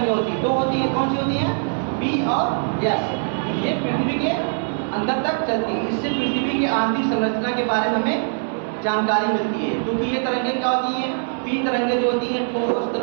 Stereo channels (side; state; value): left; silent; 64 dB below the other